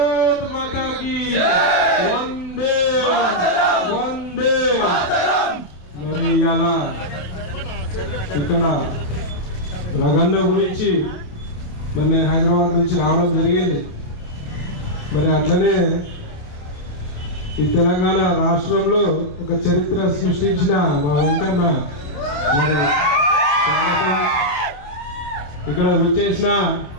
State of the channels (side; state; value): right; late; 28 ms